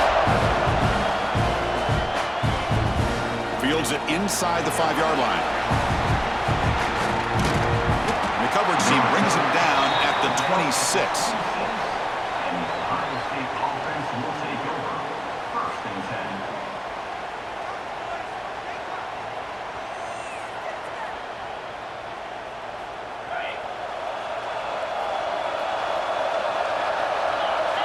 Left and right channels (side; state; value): both; identical; correlation 1.00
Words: Fields it inside the 5-yard line. And the coverage team brings him down at the 26.